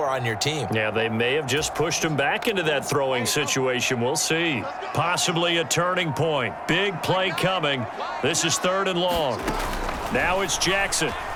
on your team? Yeah, they may have just pushed him back into that throwing situation. We'll see. Possibly a turning point. Big play coming. This is 3rd and long. Now it's Jackson.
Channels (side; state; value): both; identical; correlation 1.00